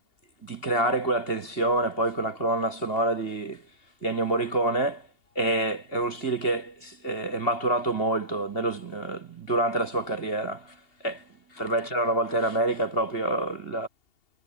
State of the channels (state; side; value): late; right; 2.7 ms